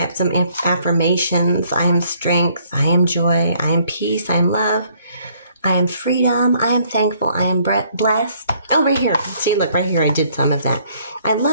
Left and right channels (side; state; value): both; inverted; correlation -0.64